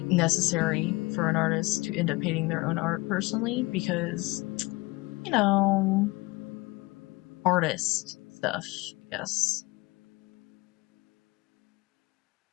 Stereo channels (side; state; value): right; quieter; 23.0 dB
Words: necessary for an artist to end up hating their own art personally because, you know, artist stuff, yes.